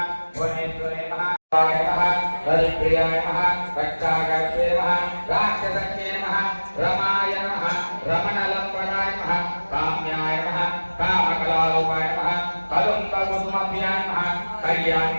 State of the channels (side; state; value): both; inverted; correlation -1.00